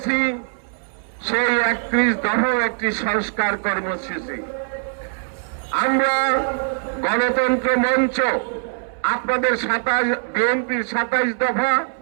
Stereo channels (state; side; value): silent; left; 61 dB below the other